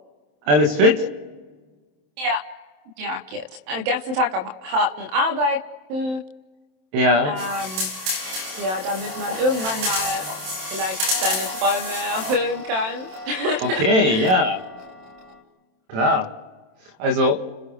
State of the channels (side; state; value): left; late; 27 ms